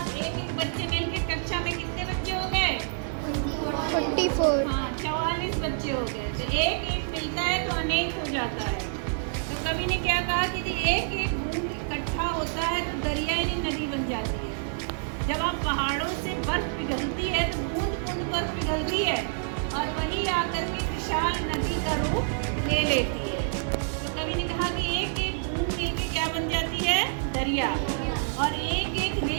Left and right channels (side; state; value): left; silent; digital silence